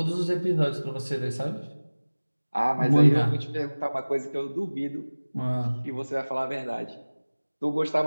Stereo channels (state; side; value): inverted; both; correlation -1.00